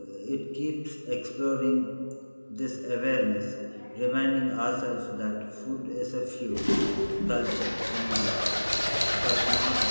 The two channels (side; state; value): both; inverted; correlation -1.00